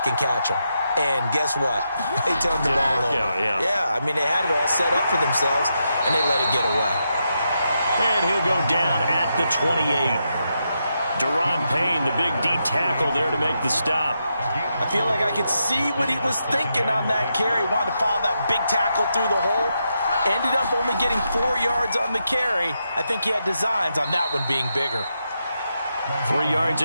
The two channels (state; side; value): inverted; both; correlation -0.84